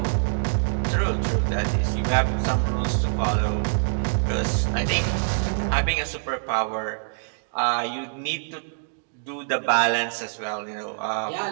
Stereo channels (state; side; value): silent; left; digital silence